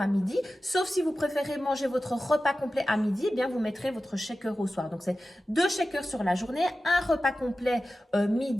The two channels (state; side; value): normal; both; correlation 0.94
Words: à midi. Sauf si vous préférez manger votre repas complet à midi, eh bien, vous mettrez votre shaker au soir. Donc, c'est 2 shakers sur la journée, un repas complet